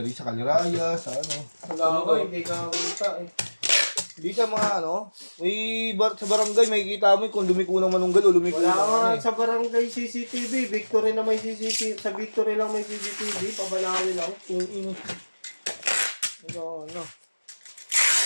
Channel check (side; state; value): both; inverted; correlation -1.00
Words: sa Kaliraya, sa ano. Wala ko, hindi ka kita eh. Hindi sa mga ano, sa barangay, makikita mo kung lumiko ng manunggal o lumiko Wala ng nga ano eh. sa barangay CCTV. Victory na may CCTV. Sa Victory lang may CCTV. Pabalawin lang. Yung ino. Ano.